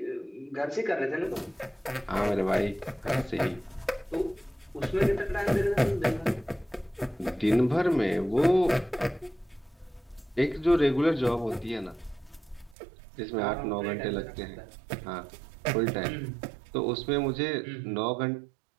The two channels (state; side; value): drops out; left; at 12.8 s